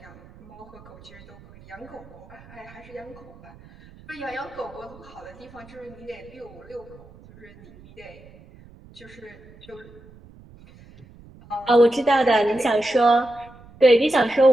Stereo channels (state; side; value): noise; right; rumble, 22 dB below the sound